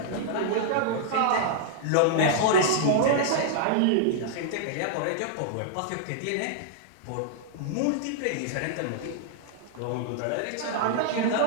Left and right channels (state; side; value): different; both; correlation -0.01